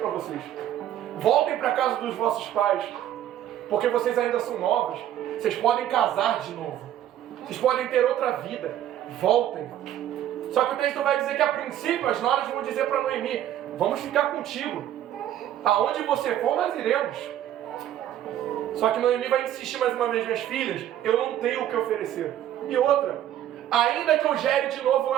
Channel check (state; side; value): quieter; left; 11.7 dB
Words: vocês. Voltem para a casa dos vossos pais, porque vocês ainda são novas. Vocês podem casar de novo. Vocês podem ter outra vida. Voltem. Só que o texto vai dizer que a princípio as noras vão dizer para Noemi: vamos ficar contigo. Aonde você for, nós iremos. Só que Noemi vai insistir mais uma vez: minhas filhas, eu não tenho o que oferecer. E outra, ainda que eu gere de novo